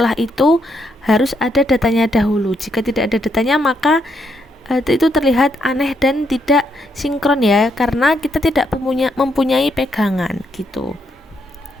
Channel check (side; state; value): both; normal; correlation 0.76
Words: itu harus ada datanya dahulu. Jika tidak ada datanya, maka itu terlihat aneh dan tidak sinkron ya, karena kita tidak mempunyai pegangan gitu.